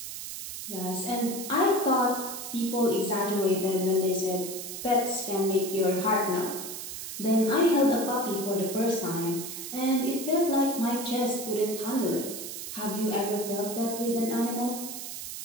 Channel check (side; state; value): right; noise; hiss, 8 dB below the sound